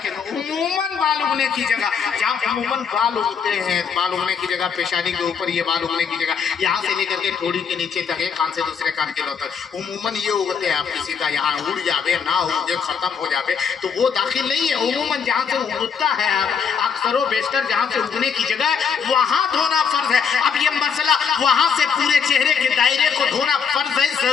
उमूमन बाल उगने की जगह, जहाँ उमूमन बाल उगते हैं, बाल उगने की जगह पेशानी के ऊपर, ये बाल उगने की जगह यहाँ से लेकर के थोड़ी के नीचे तक, एक कान से दूसरे कान के तक उमूमन ये उगते हैं। आप किसी का यहाँ उड़ जावे ना उगे, खत्म हो जावे तो वो दाखिल नहीं है। उमूमन जहाँ से उगता है, अक्सर बेशतर जहाँ से उगने की जगह वहाँ धोना फर्ज है। अब ये मसला वहां से पूरे चेहरे के दायरे को धोना फर्ज है,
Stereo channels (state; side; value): quieter; right; 6.6 dB